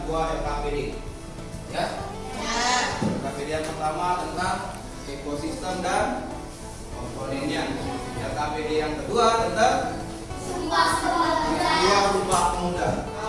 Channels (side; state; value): both; identical; correlation 1.00